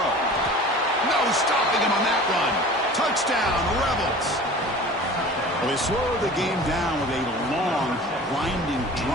No stopping him on that run. Touchdown, Rebels. Well, they slowed the game down with a long, grinding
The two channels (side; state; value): both; normal; correlation 0.41